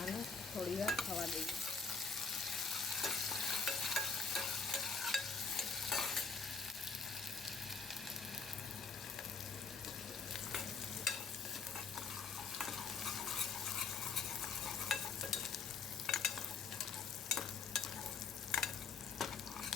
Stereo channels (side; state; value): right; quieter; 5.0 dB